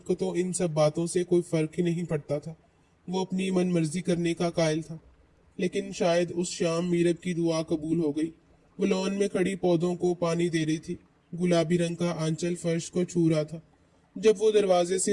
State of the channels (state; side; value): identical; both; correlation 1.00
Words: کو تو ان سب باتوں سے کوئی فرق ہی نہیں پڑتا تھا۔ وہ اپنی من مرضی کرنے کا قائل تھا۔ لیکن شاید اس شام میرب کی دعا قبول ہو گئی۔ وہ لان میں کھڑی پودوں کو پانی دے رہی تھی۔ گلابی رنگ کا آنچل فرش کو چھو رہا تھا۔ جب وہ دروازے